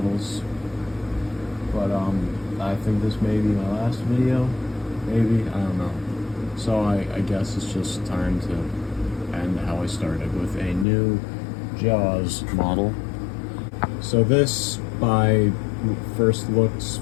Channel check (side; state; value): right; drops out; at 10.9 s